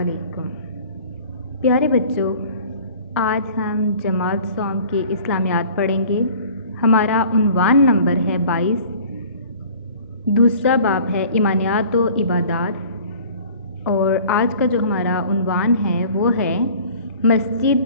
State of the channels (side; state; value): both; inverted; correlation -0.47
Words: प्यारे बच्चों, आज हम जमात सौम की इस्लामियात पढ़ेंगे। हमारा उन्वान नंबर है 22। दूसरा बाब है ईमानियात व इबादात। और आज का जो हमारा उन्वान है वो है मस्जिद